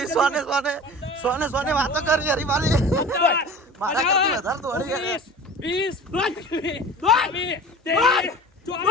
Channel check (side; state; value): both; normal; correlation 0.38